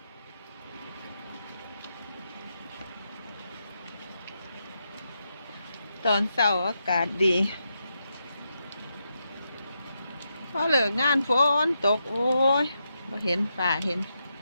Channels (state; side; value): inverted; both; correlation -0.84